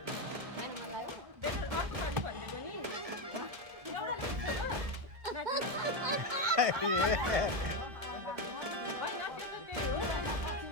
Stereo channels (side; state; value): left; late; 1.7 ms